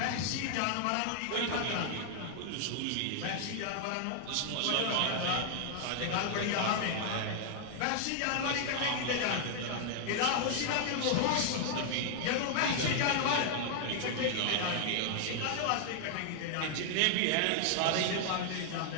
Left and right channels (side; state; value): both; different; correlation 0.00